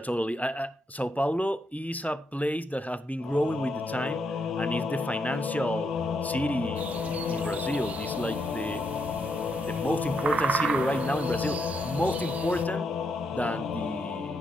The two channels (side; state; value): both; normal; correlation 0.79